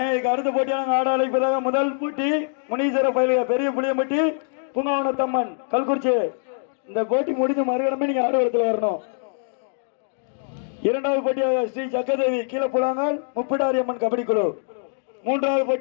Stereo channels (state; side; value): silent; right; digital silence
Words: அடுத்த போட்டியான ஆட அழைப்பதாக முதல் போட்டி முனீஸ்வர பயிலுக பெரிய புளியம்பட்டி பூங்காவனத்தம்மன் கல்குறிச்சி. இந்த போட்டி முடிந்து மறுகடமே நீங்க ஆடுகளத்தில் வரணும். இரண்டாவது போட்டியாக ஸ்ரீ சக்கரதேவி கீழப்புலாங்கால் முப்பிடாரி அம்மன் கபடி குழு. மூன்றாவது